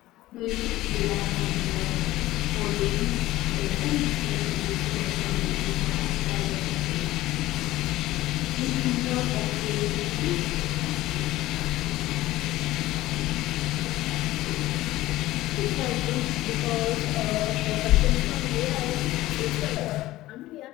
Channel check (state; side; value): quieter; right; 16.7 dB